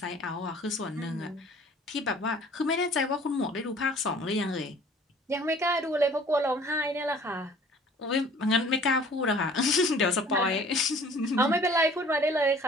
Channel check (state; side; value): normal; both; correlation 0.51